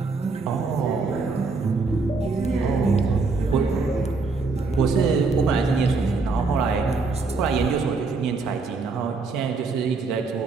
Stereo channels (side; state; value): left; quieter; 4.1 dB